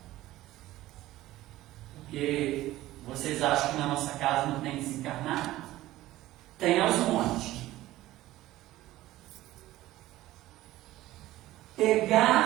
porque vocês acham que na nossa casa não tem desencarnado? Tem aos montes.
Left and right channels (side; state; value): left; quieter; 16.0 dB